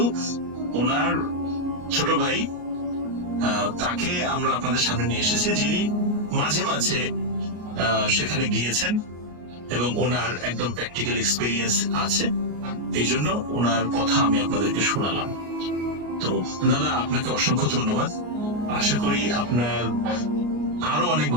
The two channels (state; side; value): late; left; 33 ms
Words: ওনার ছোট ভাই তাকে আমরা আপনাদের সামনে নিয়ে এসেছি, যিনি মাঝে মাঝে সেখানে গিয়েছেন এবং ওনার একদম প্র্যাকটিক্যাল এক্সপিরিয়েন্স আছে। এই জন্য ওনার কথা আমি আপনাদেরকে শোনালাম। তো দাদা আপনাকে অসংখ্য ধন্যবাদ। আশা করি আপনার আরো অনেক